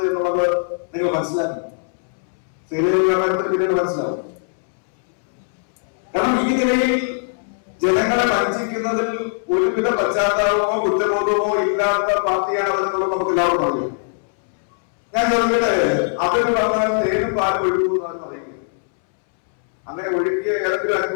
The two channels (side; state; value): right; silent; 65 dB below the other